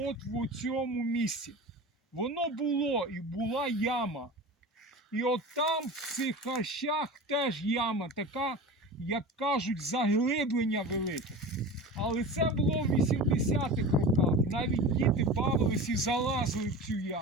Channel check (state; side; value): normal; both; correlation 0.32